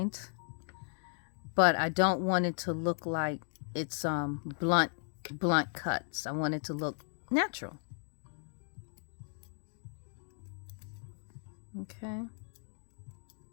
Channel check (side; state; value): right; silent; digital silence